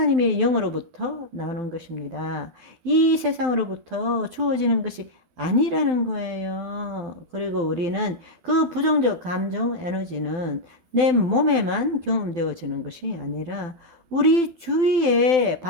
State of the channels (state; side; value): late; left; 12 ms